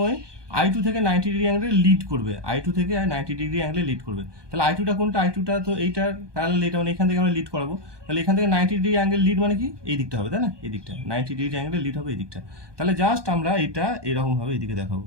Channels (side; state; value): left; late; 1.2 ms